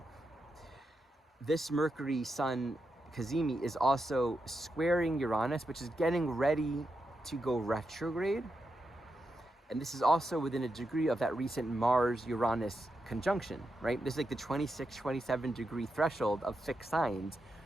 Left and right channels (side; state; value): both; normal; correlation 0.86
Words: This Mercury Sun Cazimi is also squaring Uranus, which is getting ready to go retrograde. And this is also within a degree of that recent Mars-Uranus conjunction, right? This is like the 26, 27 degree threshold of fixed signs